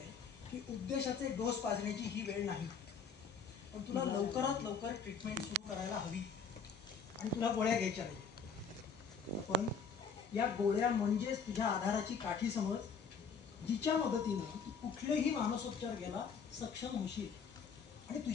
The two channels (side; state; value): right; quieter; 5.6 dB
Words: की उद्देशाचे डोस पाजण्याची ही वेळ नाही. पण तुला लवकरात लवकर ट्रीटमेंट सुरू करायला हवी आणि तुला गोळ्या घ्यायच्या नाही. पण या गोळ्या म्हणजेच तुझ्या आधाराची काठी समज, जिच्या मदतीनं तू कुठलेही मानसोपचार घ्यायला सक्षम होशील. आणि